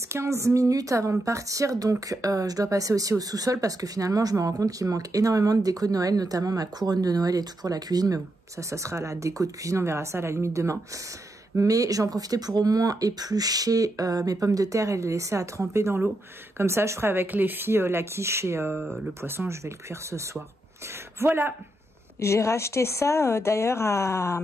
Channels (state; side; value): normal; both; correlation 0.83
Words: 15 minutes avant de partir, donc je dois passer aussi au sous-sol parce que finalement je me rends compte qu'il me manque énormément de déco de Noël, notamment ma couronne de Noël et tout pour la cuisine, mais bon ça sera la déco de cuisine, on verra ça à la limite demain. Mais j'en profitais pour au moins éplucher mes pommes de terre et les laisser à tremper dans l'eau. Comme ça je ferai avec les filles la quiche et le poisson, je vais le cuire ce soir. Voilà. J'ai racheté ça d'ailleurs à